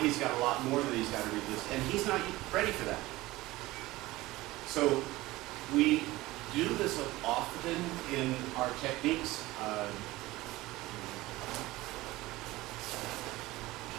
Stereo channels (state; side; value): quieter; left; 18.8 dB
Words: got a lot more that he's got to resist, and he's not ready for that. So we do this often in our techniques.